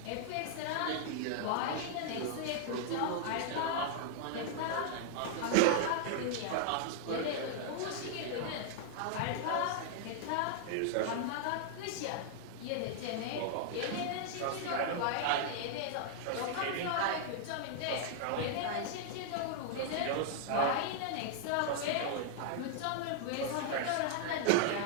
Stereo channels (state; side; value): different; both; correlation -0.01